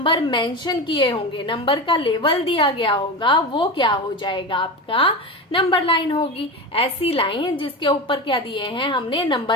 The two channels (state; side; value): normal; both; correlation 0.23